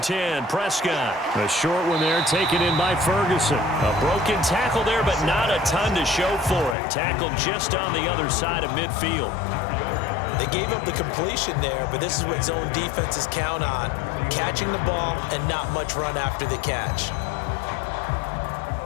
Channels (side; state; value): right; drops out; at 6.8 s